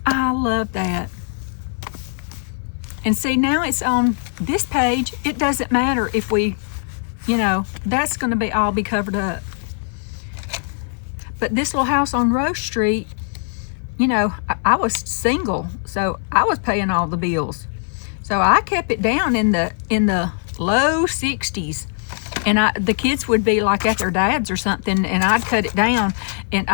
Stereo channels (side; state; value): right; silent; 64 dB below the other